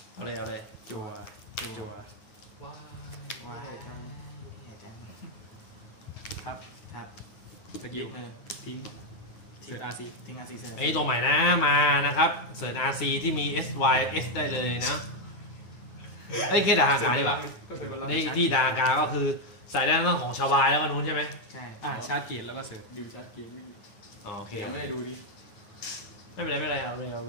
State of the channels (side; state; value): right; late; 9.7 ms